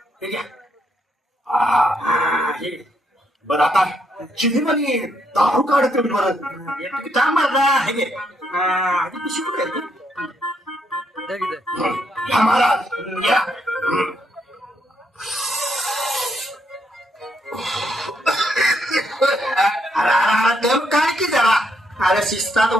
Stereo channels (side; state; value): both; normal; correlation 0.75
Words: हे घ्या. हे. बरं आता चिनीमध्ये दारू काढत बरं. का मारला. हे घे. आधी पिशवी कुठे आहे ती? घ्या महाराज घ्या. दम काय की जरा. अरे शिस्तात